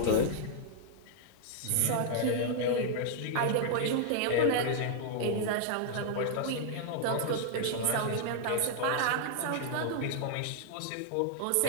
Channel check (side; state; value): both; different; correlation 0.00